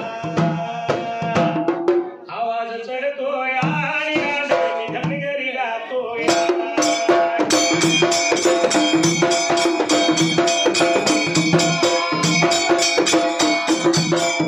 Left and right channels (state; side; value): identical; both; correlation 1.00